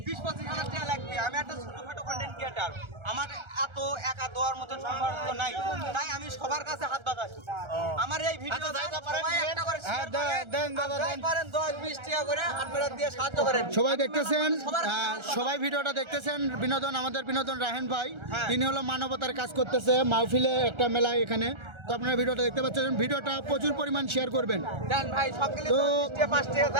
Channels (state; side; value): late; left; 1.3 ms